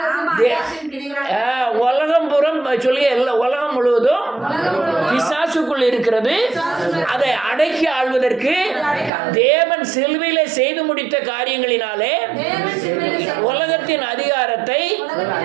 உலகம் புறம் சொல்லி உலகம் முழுவதும் பிசாசுக்குள் இருக்கிறது. அதை அடக்கி ஆள்வதற்கு தேவன் சிலுவையிலே செய்து முடித்த காரியங்களினாலே உலகத்தின் அதிகாரத்தை,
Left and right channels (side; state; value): left; drops out; at 9.1 s